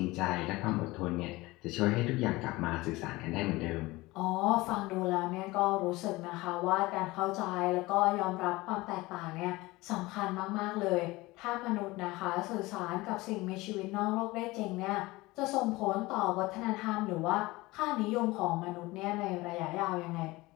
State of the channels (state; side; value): quieter; right; 20.8 dB